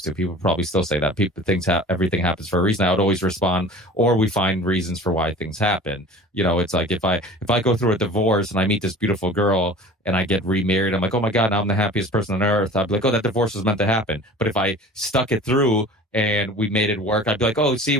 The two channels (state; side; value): normal; both; correlation 0.42